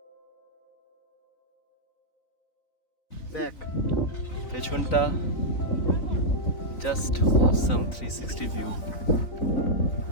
দেখ পেছনটা জাস্ট অসাম 360 ভিউ।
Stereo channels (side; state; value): right; late; 3.9 ms